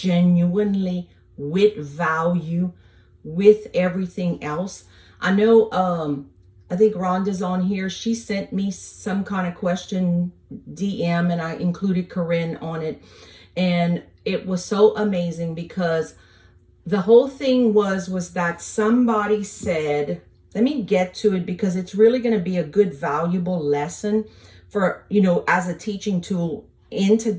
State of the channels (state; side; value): identical; both; correlation 1.00